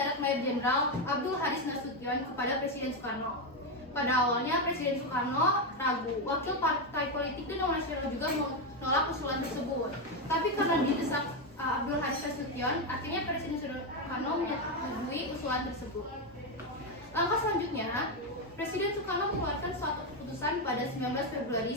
Mayor Jenderal Abdul Haris Nasution kepada Presiden Soekarno. Pada awalnya Presiden Soekarno ragu, wakil partai politik dan Dewan Nasional juga menolak usulan tersebut. Tapi karena didesak Abdul Haris Nasution, akhirnya Presiden Soekarno menyetujui usulan tersebut. Langkah selanjutnya, Presiden Soekarno mengeluarkan suatu keputusan pada 19 Februari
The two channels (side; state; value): both; normal; correlation 0.08